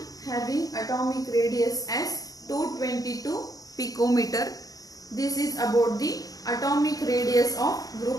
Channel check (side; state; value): right; late; 0.18 ms